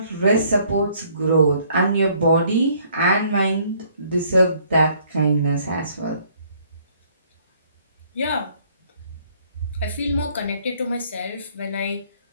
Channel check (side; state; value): both; inverted; correlation -0.62